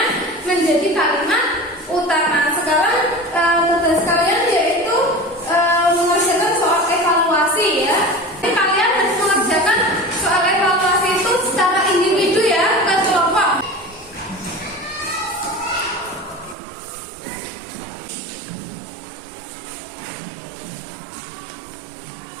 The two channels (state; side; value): drops out; left; at 16.6 s